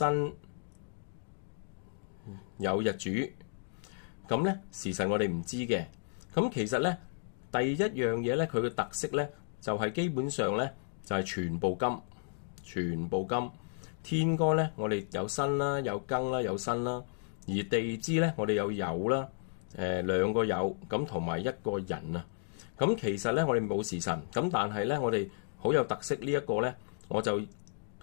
酉日主。咁咧時辰我哋唔知嘅。咁其實咧第一樣嘢咧，佢嘅特色咧就係基本上咧就係全部金，全部金。天干咧我哋有辛啦，有庚啦，有辛啦。而地支咧，我哋有酉啦，兩個酉咁同埋一個寅啊。咁其實咧，我哋冇時辰，咁但係咧，我哋好有特色呢一個咧，我就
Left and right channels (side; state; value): right; silent; digital silence